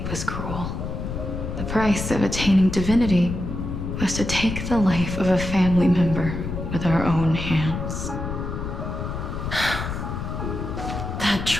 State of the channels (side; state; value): left; noise; rumble, 5 dB below the sound